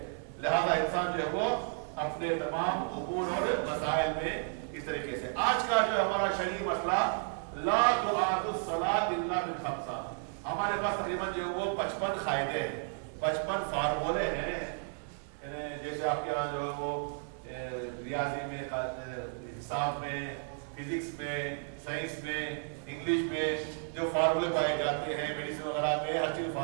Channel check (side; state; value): left; silent; 56 dB below the other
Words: लिहाजा इंसान जो है वो अपने तमाम उमूर और मसाइल में इस तरीके से। आज का जो हमारा शरीय मसला, ला तुआदु सलात इल्ला बिल खम्सा। हमारे पास तकरीबन जो है वो 55 कायदे हैं, 55 फार्मूले हैं। जैसे आपके यहाँ जो है वो रियाजी में, हिसाब में, फिजिक्स में, साइंस में, इंग्लिश में जो फार्मूले पाए जाते हैं, मेडिसिन वगैरह में हर चीज